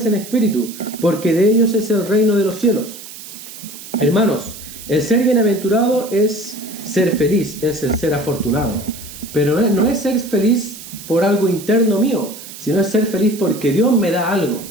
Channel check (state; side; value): noise; right; hiss, 14 dB below the sound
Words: en espíritu, porque de ellos es el reino de los cielos. Hermanos, el ser bienaventurado es ser feliz, es el ser afortunado. Pero no es ser feliz por algo interno mío, sino es ser feliz porque Dios me da algo.